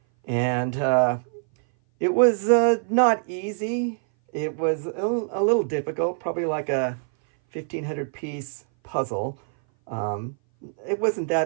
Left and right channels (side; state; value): left; silent; 59 dB below the other